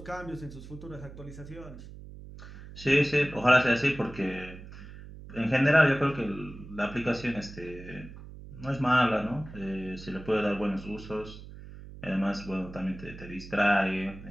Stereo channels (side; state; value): right; noise; hum, 15 dB below the sound